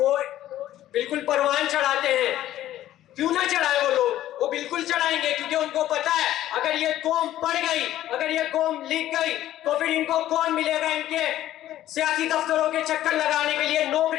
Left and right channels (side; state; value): right; quieter; 13.3 dB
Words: بالکل پروان چڑھاتے ہیں۔ کیوں نہ چڑھائے وہ لوگ؟ وہ بالکل چڑھائیں گے، کیونکہ ان کو پتا ہے اگر یہ قوم پڑھ گئی، اگر یہ قوم لکھ گئی، تو پھر ان کو کون ملے گا؟ ان کے سیاسی دفتروں کے چکر لگانے کے لیے،